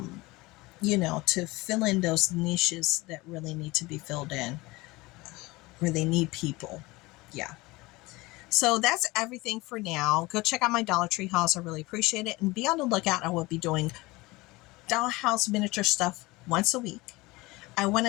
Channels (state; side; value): quieter; right; 21.8 dB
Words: fill in those niches that really need to be filled in, where they need people. Yeah. So that's everything for now. Go check out my Dollar Tree hauls. I really appreciate it. And be on the lookout. I will be doing dollhouse miniature stuff once a week. I want